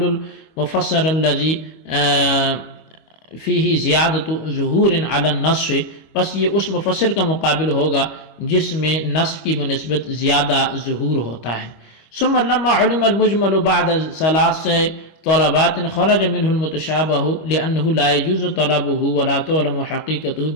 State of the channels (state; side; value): late; right; 25 ms